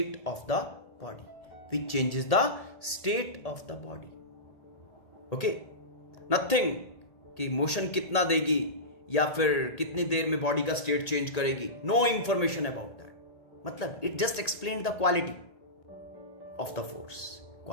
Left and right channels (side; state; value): right; late; 1.8 ms